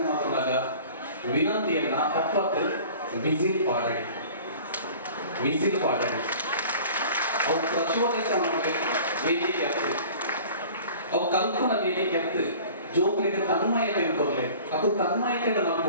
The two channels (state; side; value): inverted; both; correlation -0.44